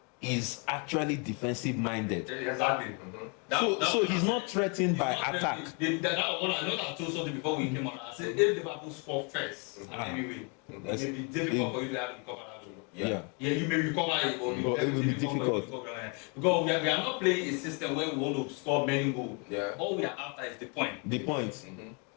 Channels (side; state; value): right; quieter; 34.7 dB